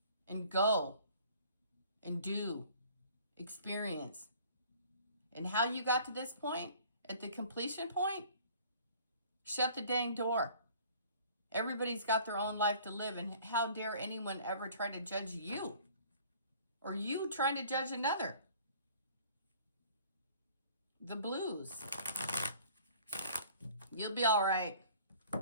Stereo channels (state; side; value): inverted; both; correlation -0.51